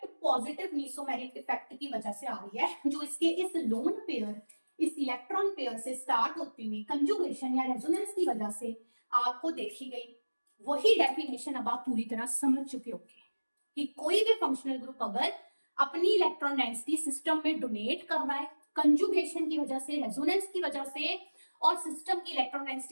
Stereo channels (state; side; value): inverted; both; correlation -1.00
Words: positive mesomeric effect की वजह से आ रही है, जो इसके इस लोन पेयर, इस इलेक्ट्रॉन पेयर से स्टार्ट होती हुई कंजुगेशन या रेजोनेंस की वजह से आपको देखी गई। वही डेफिनेशन अब आप पूरी तरह समझ चुके होंगे कि कोई भी फंक्शनल ग्रुप अगर अपनी इलेक्ट्रॉन डेंसिटी सिस्टम में डोनेट कर रहा है कंजुगेशन की वजह से, रेजोनेंस की वजह से, और सिस्टम की इलेक्ट्रॉन